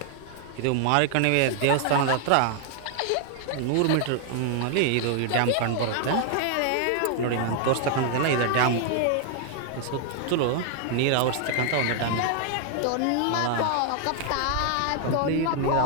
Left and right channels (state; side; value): different; both; correlation 0.00